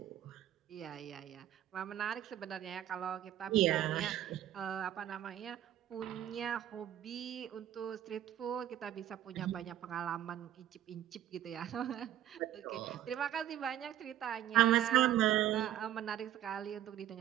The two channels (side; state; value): left; quieter; 11.9 dB